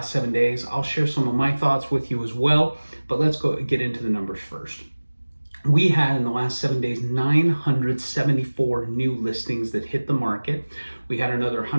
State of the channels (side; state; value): both; inverted; correlation -1.00